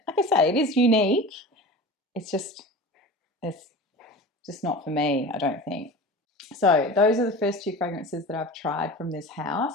like I say, it is unique. It's just not for me, I don't think. So those are the first two fragrances that I've tried from this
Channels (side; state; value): both; normal; correlation 0.34